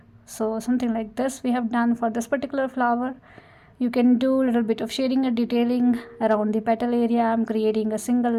So something like this we have done for this particular flower. You can do a little bit of shading and detailing around the petal area. I'm creating a single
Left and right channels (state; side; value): identical; both; correlation 1.00